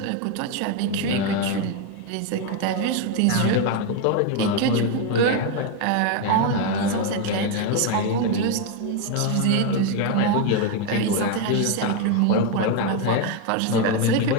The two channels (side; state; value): both; different; correlation 0.02